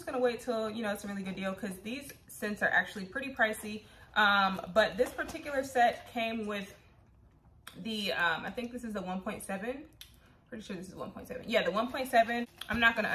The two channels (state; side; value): identical; both; correlation 1.00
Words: gonna wait till, you know, it's a really good deal because these scents are actually pretty pricey. But this particular set came with the, I think this is the 1.7. Pretty sure this is 1.7. Yeah, the 1.7. I'm not gonna